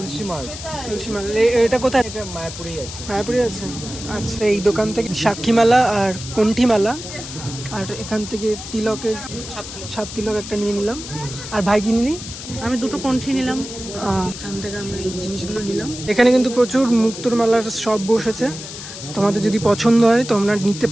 মাল, এটা কোথায়? মায়াপুরেই আছে। মায়াপুরে আছে। আচ্ছা, এই দোকান থেকে সাক্ষী মালা আর কণ্ঠী মালা, আর এখান থেকে তিলকের ছাপ তিলক একটা নিয়ে নিলাম। আর ভাই কি নিলি? আমি দুটো কণ্ঠী নিলাম। এখান থেকে আমরা এই জিনিসগুলো নিলাম। এখানে কিন্তু প্রচুর মুক্তোর মালার শপ বসেছে, তোমাদের যদি পছন্দ হয় তোমরা নিতে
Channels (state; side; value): noise; left; hiss, 11 dB below the sound